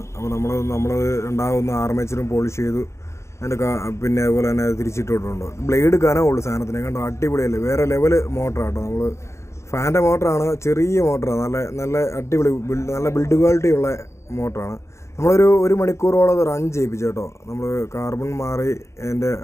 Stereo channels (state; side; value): late; right; 0.14 ms